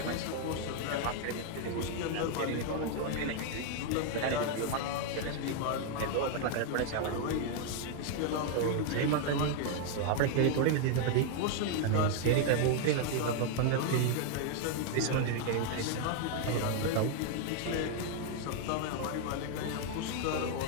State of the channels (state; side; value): different; both; correlation 0.00